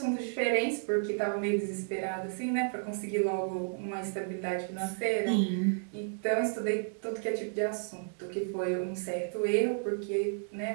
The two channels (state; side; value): silent; left; digital silence